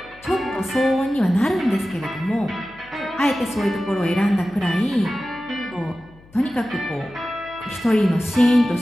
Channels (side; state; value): left; noise; hum, 26 dB below the sound